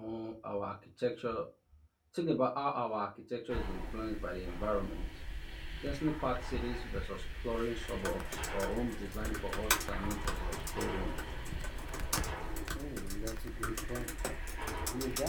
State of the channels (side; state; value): both; identical; correlation 1.00